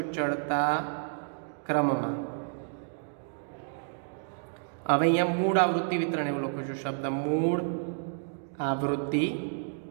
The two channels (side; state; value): left; silent; digital silence